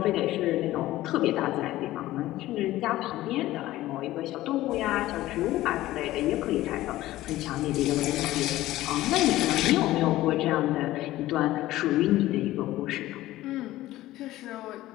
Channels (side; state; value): right; quieter; 16.0 dB